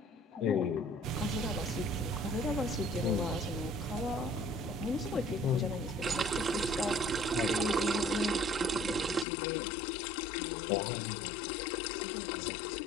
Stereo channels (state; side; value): drops out; right; at 9.2 s